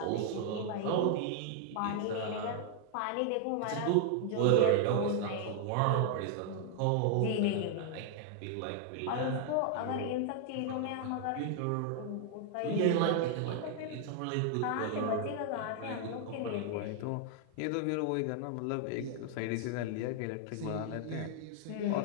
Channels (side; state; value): both; different; correlation 0.00